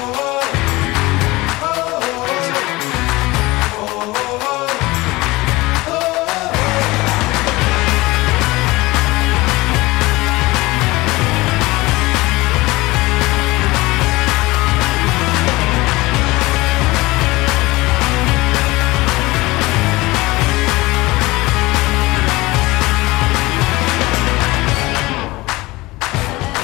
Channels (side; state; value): right; quieter; 21.0 dB